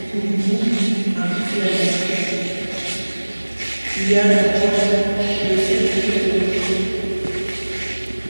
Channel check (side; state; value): both; inverted; correlation -1.00